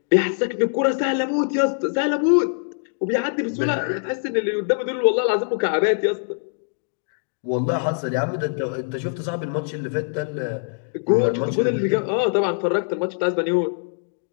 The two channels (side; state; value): right; silent; digital silence